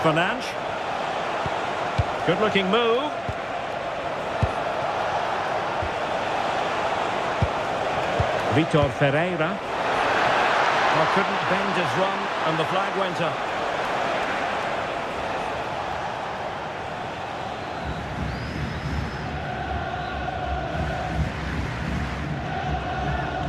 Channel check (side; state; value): both; identical; correlation 1.00